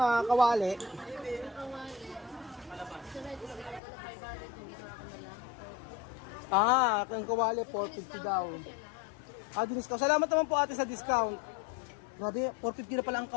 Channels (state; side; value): drops out; right; at 3.8 s